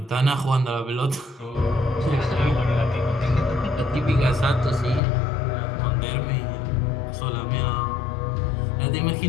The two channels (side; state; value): right; drops out; at 5.0 s